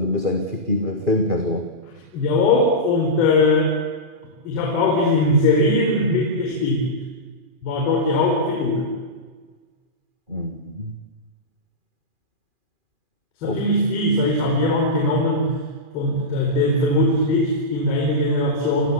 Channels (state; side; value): late; left; 2.4 ms